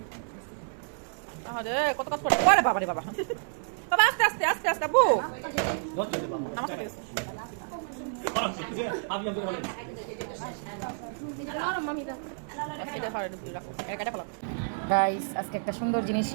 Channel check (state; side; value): silent; left; digital silence